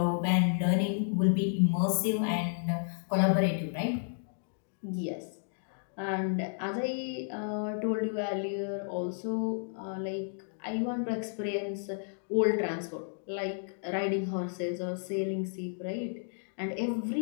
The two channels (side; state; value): right; silent; digital silence